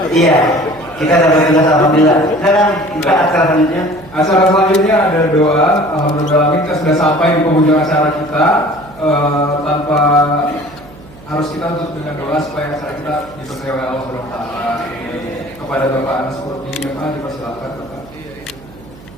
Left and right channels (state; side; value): noise; right; hum, 21 dB below the sound